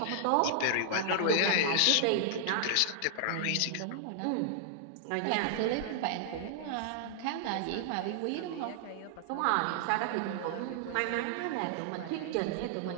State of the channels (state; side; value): different; both; correlation -0.01